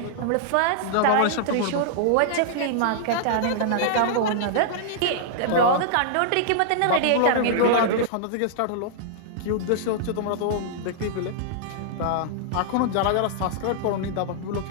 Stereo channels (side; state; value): both; different; correlation -0.01